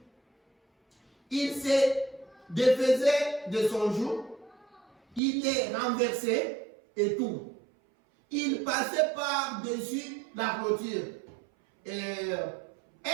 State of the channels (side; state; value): left; drops out; at 5.2 s